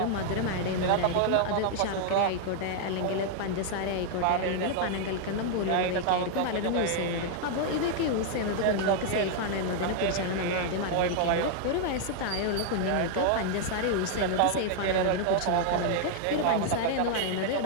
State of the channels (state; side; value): different; both; correlation 0.00